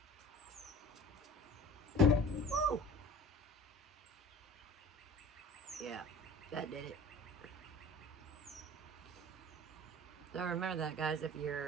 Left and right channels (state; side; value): normal; both; correlation 0.43